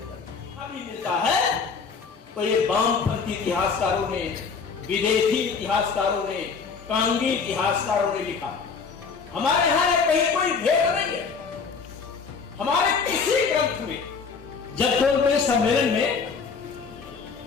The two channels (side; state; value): right; quieter; 5.4 dB